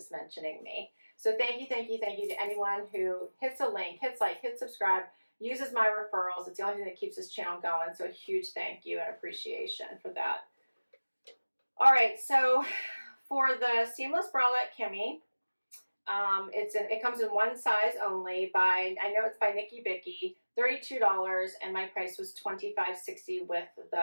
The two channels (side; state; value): both; inverted; correlation -1.00